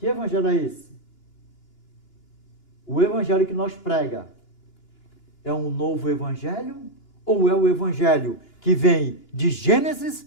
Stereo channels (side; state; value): right; late; 2.9 ms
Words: evangelho é esse? O evangelho que nós prega é um novo evangelho ou é o evangelho que vem de Gênesis